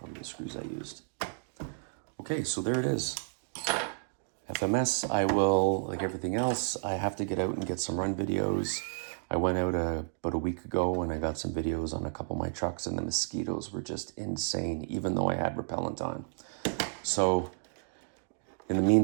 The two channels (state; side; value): silent; left; digital silence